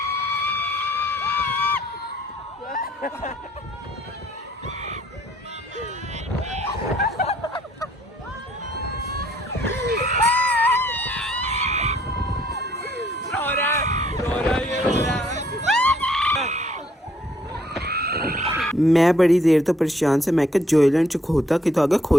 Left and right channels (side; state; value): both; normal; correlation 0.65